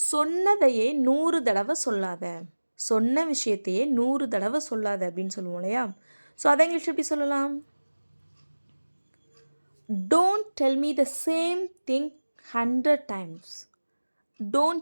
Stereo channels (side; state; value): both; inverted; correlation -1.00